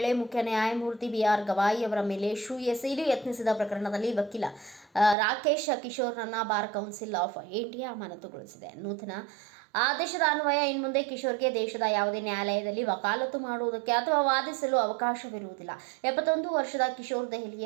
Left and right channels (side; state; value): left; drops out; at 5.2 s